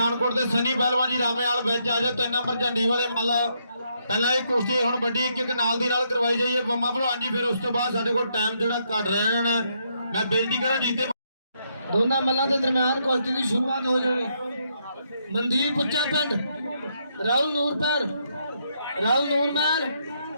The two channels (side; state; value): both; inverted; correlation -0.76